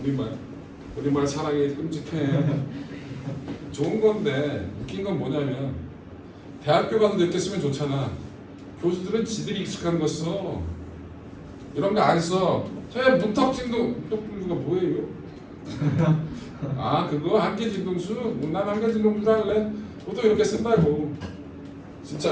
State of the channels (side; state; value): both; identical; correlation 1.00